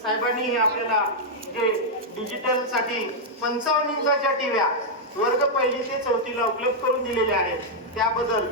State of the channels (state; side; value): normal; both; correlation -0.04